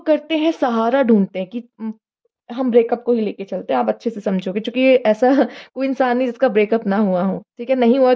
करते हैं सहारा ढूँढते हैं कि हम ब्रेकअप को ही लेके चलते हैं, आप अच्छे से समझोगे क्योंकि ये ऐसा कोई इंसान नहीं जिसका ब्रेकअप ना हुआ हो, ठीक है? नहीं हुआ है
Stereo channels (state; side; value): identical; both; correlation 1.00